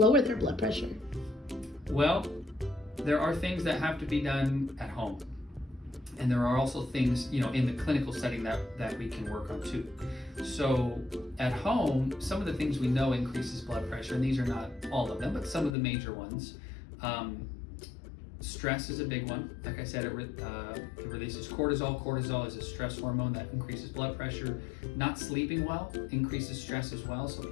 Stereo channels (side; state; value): right; drops out; at 15.8 s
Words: their blood pressure? Well, there are things that have to be done at home. And there are also things, in the clinical setting that we can work on too. So at home, some of the things we know increases blood pressure, and these are not all of them, but some of the major ones. Stress is a big one. Like I said, it releases cortisol. Cortisol is a stress hormone that increases blood pressure. Not sleeping well increases stress as well, so